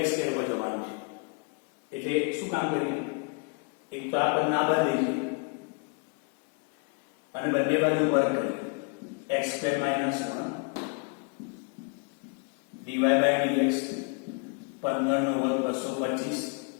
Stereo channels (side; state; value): right; quieter; 34.5 dB